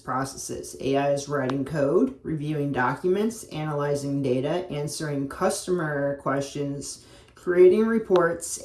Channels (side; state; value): both; identical; correlation 1.00